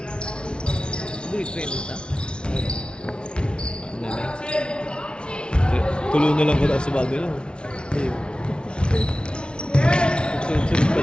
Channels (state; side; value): late; right; 0.056 ms